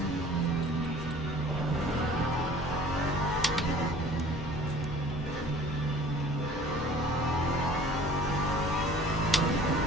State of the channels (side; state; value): both; normal; correlation 0.49